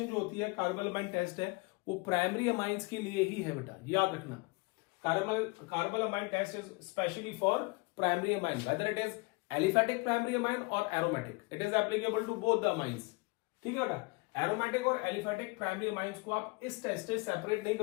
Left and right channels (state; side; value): quieter; right; 27.5 dB